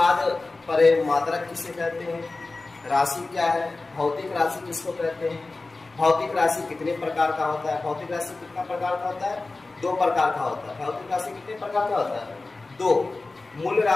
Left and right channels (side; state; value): right; quieter; 3.4 dB